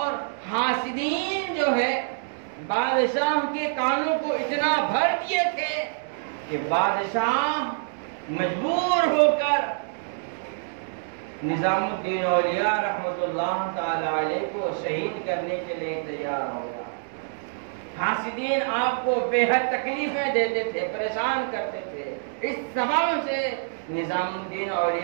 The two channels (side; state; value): left; silent; digital silence